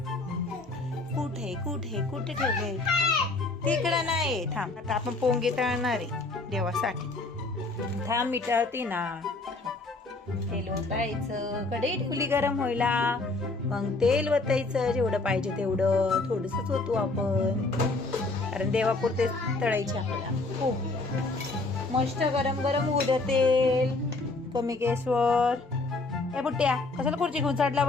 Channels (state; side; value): quieter; right; 3.3 dB